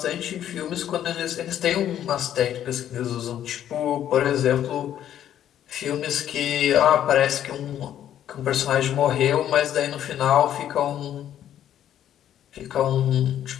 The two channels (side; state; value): right; quieter; 10.8 dB